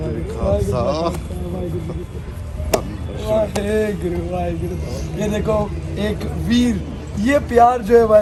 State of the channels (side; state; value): both; identical; correlation 1.00